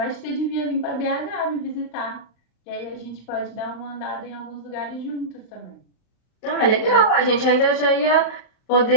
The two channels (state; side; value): late; right; 39 ms